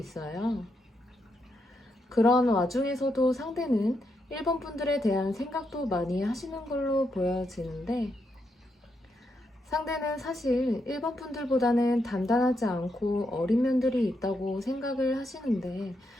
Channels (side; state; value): both; normal; correlation 0.81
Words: 그런 와중에서도 상대는 1번 분들에 대한 생각도 많이 하시는 걸로 보여지는데, 상대는 사실 1번 분들보다는 단단하지 않고 어린 면들이 있다고 생각을 하시는데,